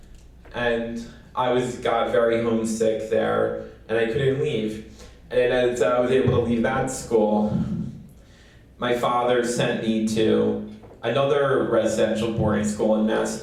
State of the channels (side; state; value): both; identical; correlation 1.00